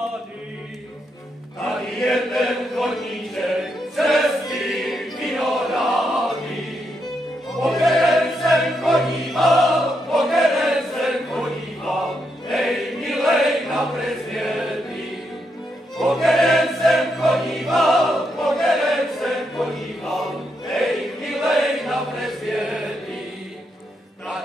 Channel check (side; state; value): both; normal; correlation 0.81